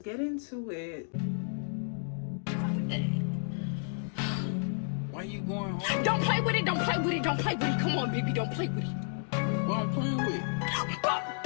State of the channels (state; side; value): silent; right; digital silence